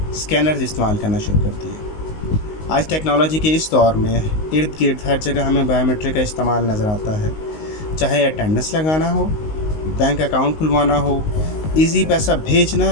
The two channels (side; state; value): right; late; 19 ms